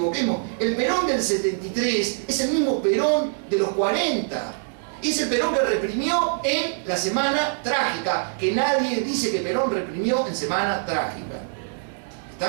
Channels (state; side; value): silent; left; 63 dB below the other